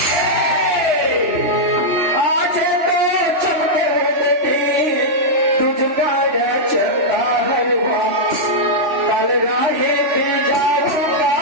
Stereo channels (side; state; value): left; late; 3.0 ms